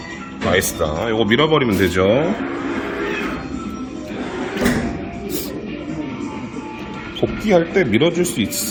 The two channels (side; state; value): both; identical; correlation 1.00